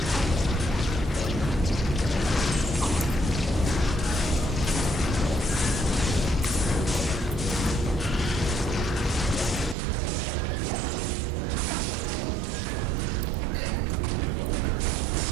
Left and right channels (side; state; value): left; drops out; at 9.8 s